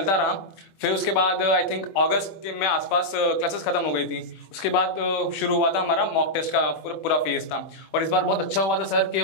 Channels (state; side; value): late; right; 25 ms